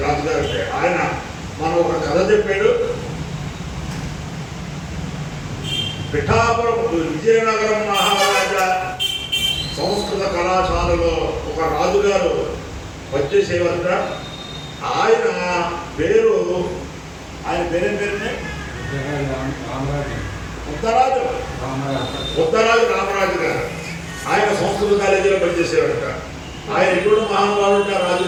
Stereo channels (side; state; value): both; identical; correlation 1.00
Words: రాజుగారు అంటే ఆయన మనం ఒక కథ చెప్పాడు. పిఠాపురం విజయనగరం మహారాజా సంస్కృత కళాశాలలో ఒక రాజుగారు వచ్చేసేవారట. ఆయన పేరు పేరేం పేరునే ఉత్తరాజు రామరాజు గారు. ఆయన సంస్కృత కాలేజీలో పనిచేసేవారట. ఆయన ఎప్పుడు మహానుభావుడు